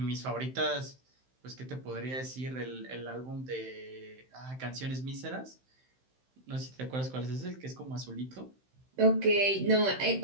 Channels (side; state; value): left; late; 15 ms